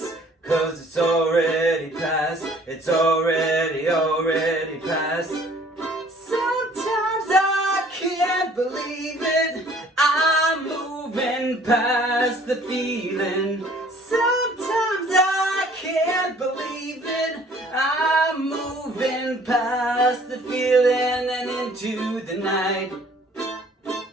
'cause it's already past. It's already past. Sometimes I can't believe it, I'm moving past the feeling. Sometimes I can't believe it, I'm moving past the feeling and into the night.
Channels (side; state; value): both; normal; correlation 0.55